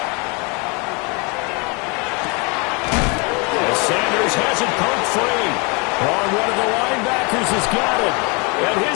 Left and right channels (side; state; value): right; quieter; 30.8 dB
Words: Sanders has it poked free. On one of the linebackers has got it. And